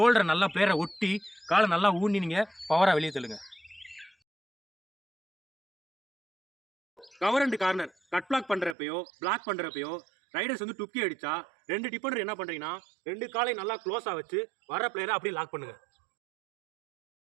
நல்லா பிளேயரை ஒட்டி காலை நல்லா ஊனி நீங்கள் பவராக வெளியே தள்ளுங்க. Cover and corner cut block பண்ணுறப்பையோ பிளாக் பண்ணுறப்பையோ ரைடர்ஸ் வந்து டுக்கி அடித்தா ரெண்டு டிஃபெண்டர் என்ன பண்ணுறீங்கன்னா, ரெண்டு காலை நல்லா க்ளோஸாக வச்சு வர பிளேயரை அப்படியே லாக் பண்ணுங்கள்.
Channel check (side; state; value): left; drops out; at 8.8 s